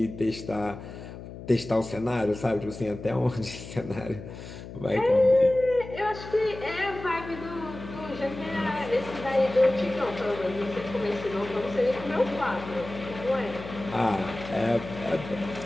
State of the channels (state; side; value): noise; left; hum, 12 dB below the sound